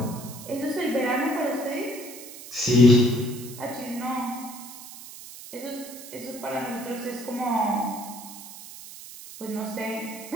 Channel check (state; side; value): noise; right; hiss, 14 dB below the sound